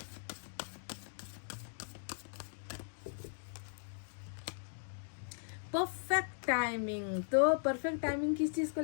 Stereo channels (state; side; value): silent; right; digital silence